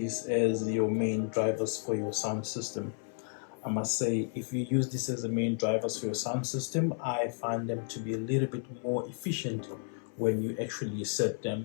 as your main drivers for your sound system. I must say, if you use this as the main drivers for your sound system, I find them to be a little bit more efficient when you actually set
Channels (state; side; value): silent; right; 56 dB below the other